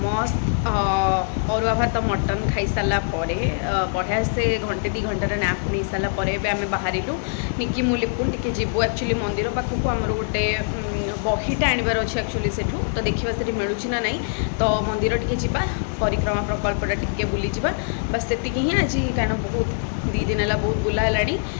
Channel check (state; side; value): silent; right; digital silence